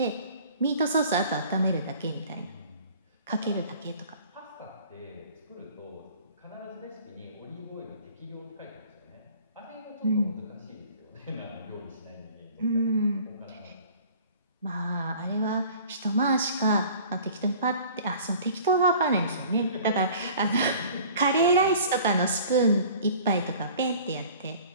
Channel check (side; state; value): both; inverted; correlation -0.47